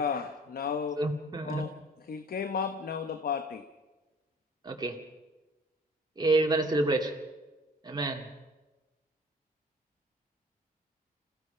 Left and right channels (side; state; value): both; normal; correlation 0.49